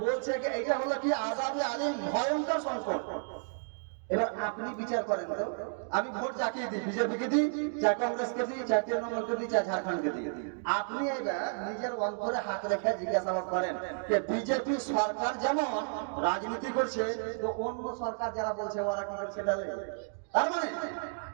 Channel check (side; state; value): left; silent; digital silence